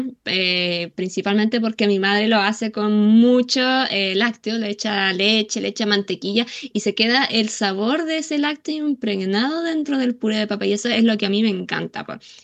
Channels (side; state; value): both; identical; correlation 1.00